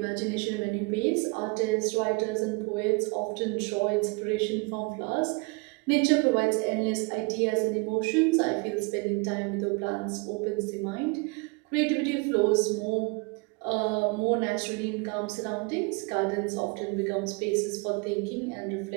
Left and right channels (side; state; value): left; quieter; 29.2 dB